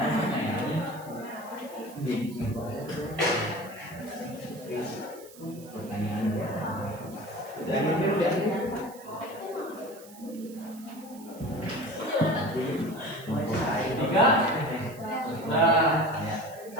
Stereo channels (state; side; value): noise; right; hiss, 21 dB below the sound